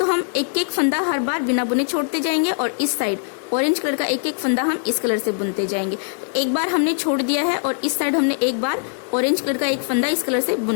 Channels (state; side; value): silent; right; 57 dB below the other